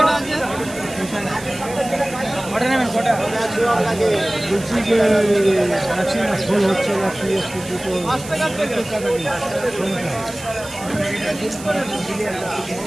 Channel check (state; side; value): noise; right; hiss, 15 dB below the sound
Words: বলছি যে ফুল হচ্ছে না,